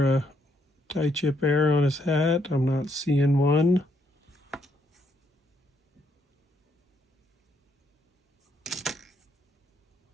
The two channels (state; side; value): normal; both; correlation 0.73